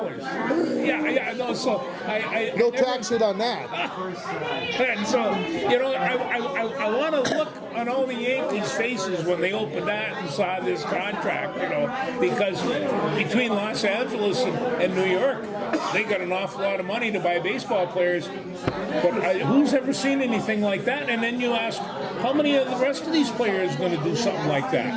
Yeah. No, so no tax hit on that. And so, I want to look on all the Yankees' faces when they opened that and saw this contract, because between Los Angeles and New York, they got an awful lot of money to buy baseball players. But who's ever seen anything like that? And then you ask, how many of the rest of these players going to do something like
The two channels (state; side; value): identical; both; correlation 1.00